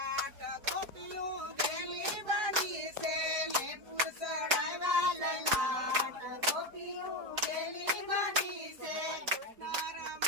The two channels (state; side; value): late; left; 4.7 ms